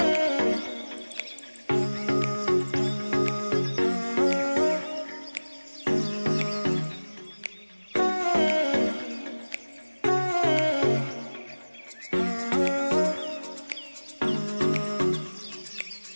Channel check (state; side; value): inverted; both; correlation -1.00